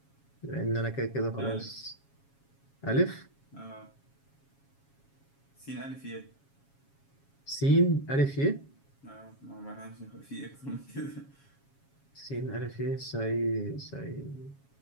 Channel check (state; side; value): late; right; 7.3 ms